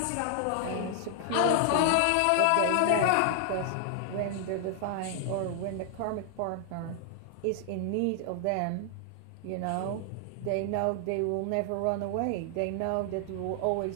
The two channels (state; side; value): different; both; correlation 0.00